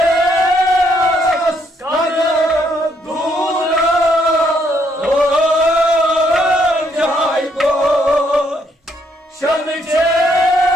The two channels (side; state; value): both; normal; correlation 0.72